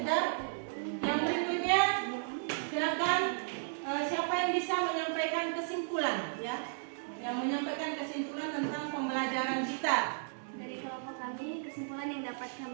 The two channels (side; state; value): left; silent; 55 dB below the other